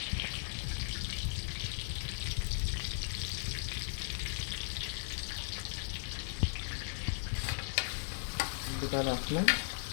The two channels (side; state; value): right; silent; 53 dB below the other